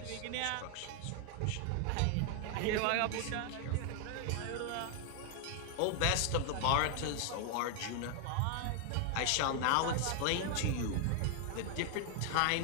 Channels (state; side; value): different; both; correlation 0.00